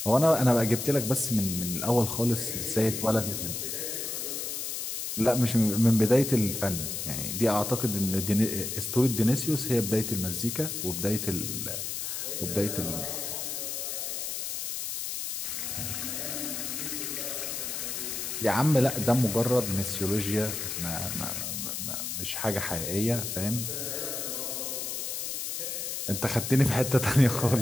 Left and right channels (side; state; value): left; noise; hiss, 4 dB below the sound